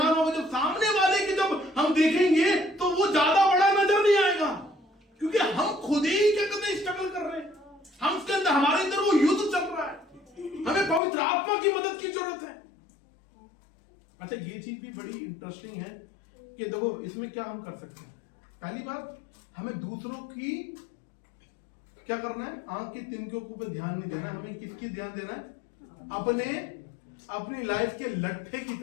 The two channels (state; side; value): drops out; right; at 11.0 s